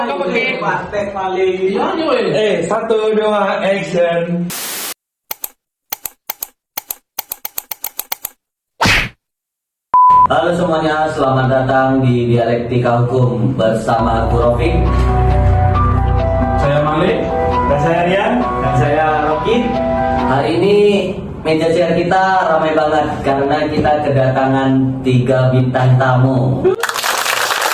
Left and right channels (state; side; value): identical; both; correlation 1.00